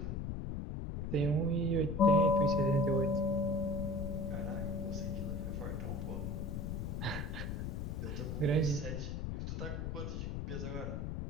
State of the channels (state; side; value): noise; left; rumble, 3 dB below the sound